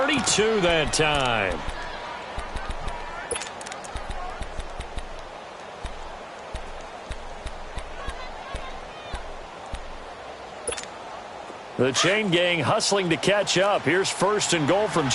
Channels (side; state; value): both; identical; correlation 1.00